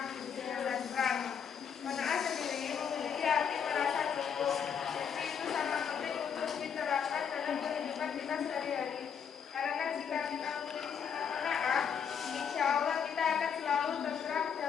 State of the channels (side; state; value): right; quieter; 7.4 dB